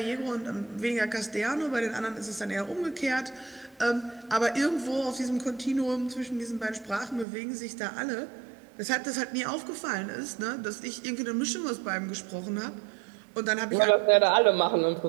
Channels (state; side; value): drops out; left; at 7.2 s